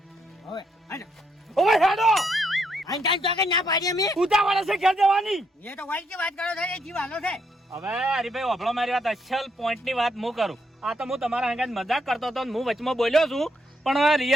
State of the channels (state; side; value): normal; both; correlation 0.76